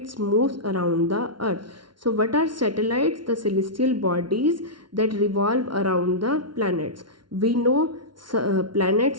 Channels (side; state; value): left; late; 0.72 ms